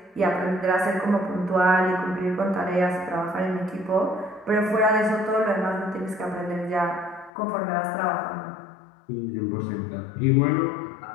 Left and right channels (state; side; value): drops out; right; at 7.3 s